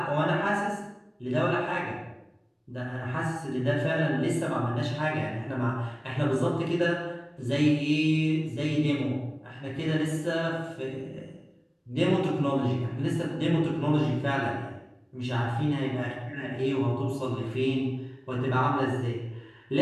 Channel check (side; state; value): both; identical; correlation 1.00